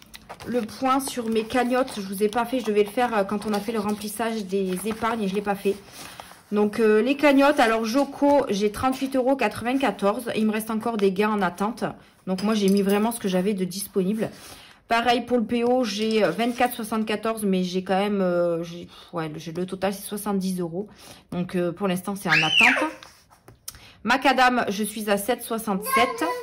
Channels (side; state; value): both; identical; correlation 1.00